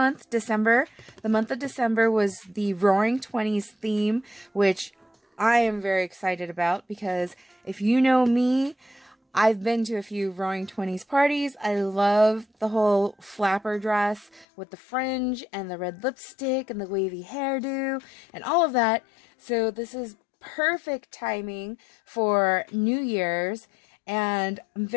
December. The month of December was the Roaring Twenties theme, which I am very excited about because if you know me, I've been to a few Roaring Twenties parties. I love the whole flapper dress with the fringe and the red lipstick and the wavy hairdo and all of that. So this is perfect timing for New Year's, and I'm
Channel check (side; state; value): right; drops out; at 14.5 s